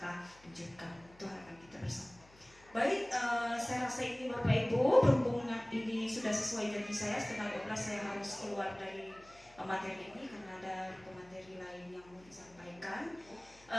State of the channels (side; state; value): left; noise; hum, 26 dB below the sound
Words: wujudkan, itu harapan kita bersama. Baik, saya rasa ini Bapak Ibu, berhubung ini sudah sesuai janji saya, setengah 12 saya harus keluar dari materi ini karena ada pemateri lain yang mau disampaikan.